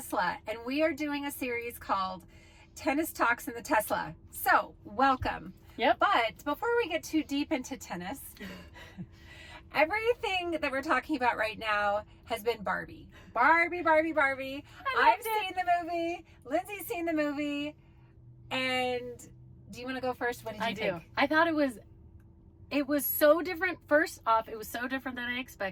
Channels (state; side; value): identical; both; correlation 1.00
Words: and we are doing a series called Tennis Talks in the Tesla. So, welcome. Yep. But before we get too deep into tennis, everything that we're talking about right now has been Barbie. Barbie. I've seen the movie. Lindsey's seen the movie. And do you want to go first? What did you think? I thought it was so different. First off, it was so different than I